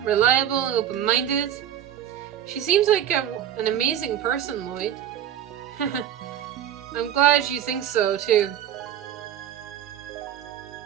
reliable, open-minded. She seems like an amazing person, Lloyd. I'm glad you think so, too.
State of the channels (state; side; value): quieter; left; 10.5 dB